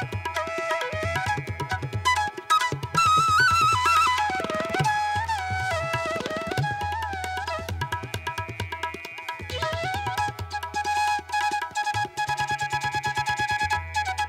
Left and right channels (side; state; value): both; identical; correlation 1.00